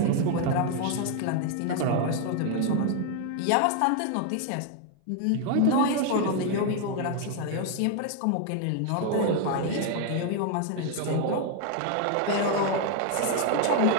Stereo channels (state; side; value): different; both; correlation 0.00